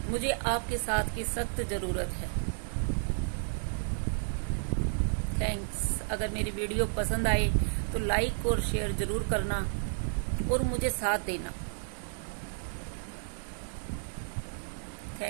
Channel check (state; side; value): silent; left; digital silence